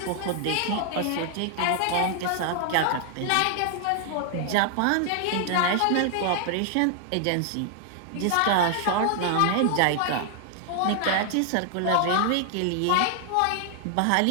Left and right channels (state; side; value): different; both; correlation 0.00